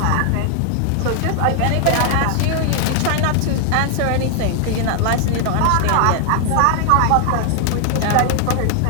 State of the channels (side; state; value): both; different; correlation 0.00